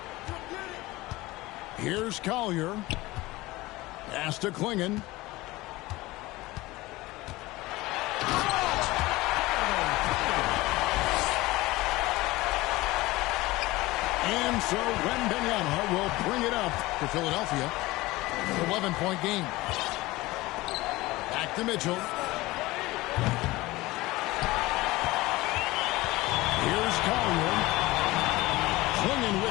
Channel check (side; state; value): right; quieter; 19.7 dB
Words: Here's Collier. Pass to Klingon. And so Wembanyama will bring it up to Philadelphia. 11-point game. Back to Mitchell. Here's Collier. Klingon